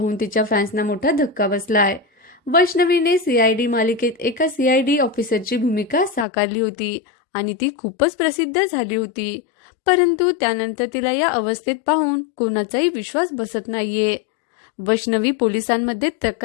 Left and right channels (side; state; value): right; drops out; at 6.2 s